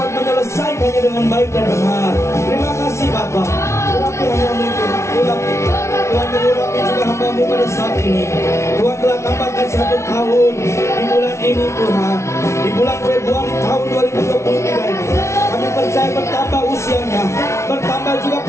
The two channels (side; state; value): right; late; 0.13 ms